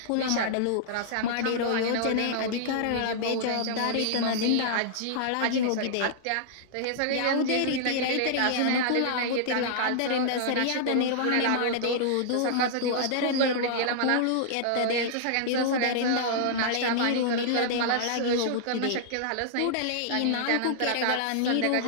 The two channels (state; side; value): different; both; correlation -0.01